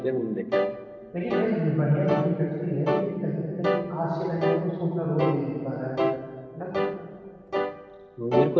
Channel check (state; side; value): identical; both; correlation 1.00